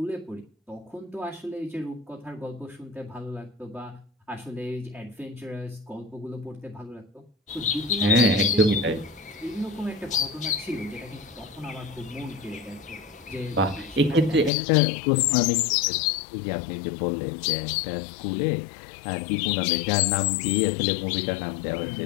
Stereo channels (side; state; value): right; drops out; at 14.5 s